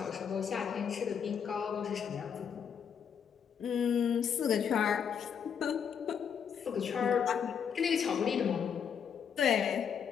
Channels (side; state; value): right; quieter; 7.5 dB